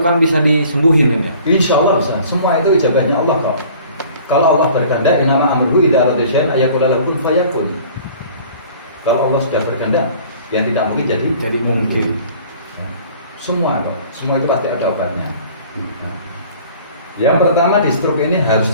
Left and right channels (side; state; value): both; inverted; correlation -0.49